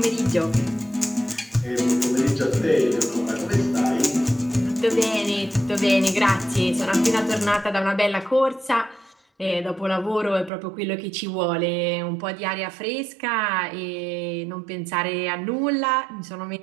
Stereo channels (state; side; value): drops out; left; at 10.5 s